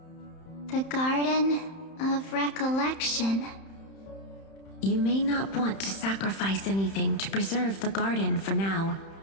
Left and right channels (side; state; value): right; late; 31 ms